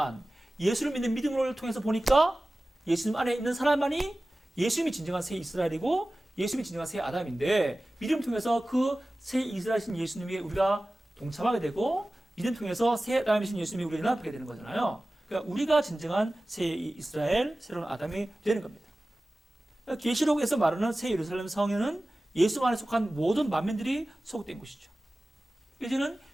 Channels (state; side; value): normal; both; correlation 0.97